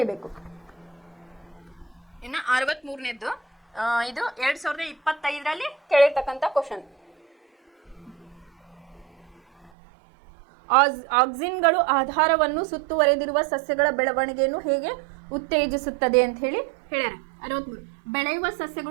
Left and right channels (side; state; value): left; drops out; at 9.7 s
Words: ಇನ್ನು 63ನೇದ್ದು ಇದು 2025ರಲ್ಲಿ ಕೇಳಿರ್ತಕ್ಕಂಥ ಕ್ವಶನ್. ಆಕ್ಸಿನ್ಗಳು ಆಧಾರವನ್ನು ಸುತ್ತುವರೆದಿರುವ ಸಸ್ಯಗಳ ಬೆಳವಣಿಗೆಯನ್ನು ಹೇಗೆ ಉತ್ತೇಜಿಸುತ್ತದೆ ಅಂತ ಹೇಳಿ ಹೇಳ್ಯಾರ. 63 ಬೆಳೆಯುವ